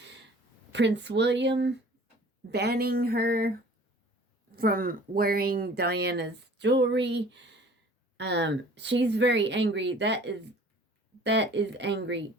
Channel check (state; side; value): normal; both; correlation 0.49